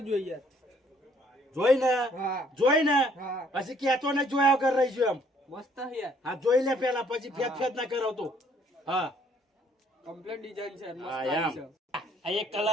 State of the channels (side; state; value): both; normal; correlation 0.63